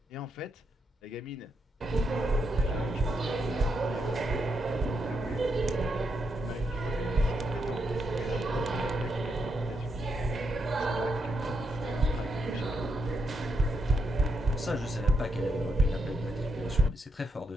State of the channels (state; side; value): normal; both; correlation 0.80